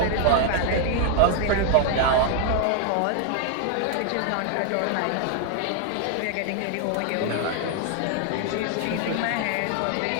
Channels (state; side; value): different; both; correlation 0.00